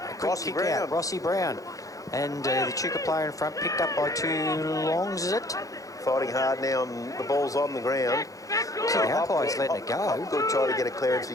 quick Rossi kick Brown. out. Rossi Brown. And the Echuca player in front picked up by two longs, is it? Fighting hard now, and the ball's on the ground. See, the umpire's letting it go. Good try to get a clearance.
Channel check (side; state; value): right; late; 0.17 ms